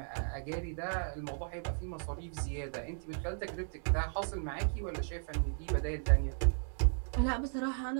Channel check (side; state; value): left; silent; digital silence